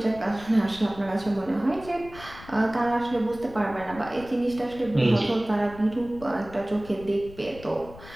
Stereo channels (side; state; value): left; noise; rumble, 18 dB below the sound